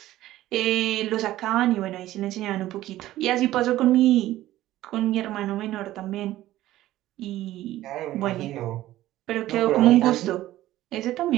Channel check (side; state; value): left; quieter; 14.9 dB